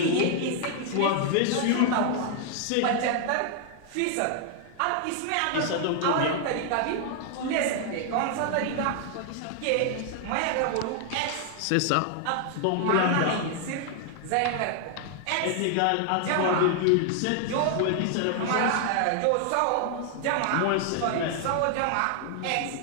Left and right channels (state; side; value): different; both; correlation 0.00